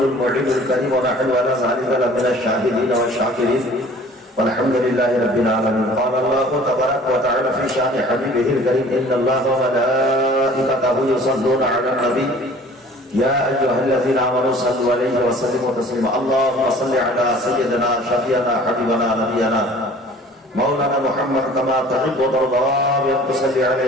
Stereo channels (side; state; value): both; normal; correlation 0.49